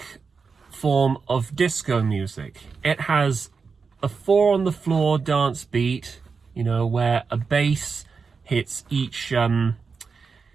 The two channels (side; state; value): left; quieter; 5.1 dB